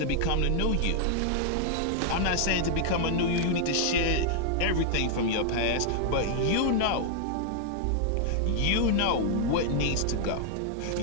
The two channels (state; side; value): different; both; correlation 0.00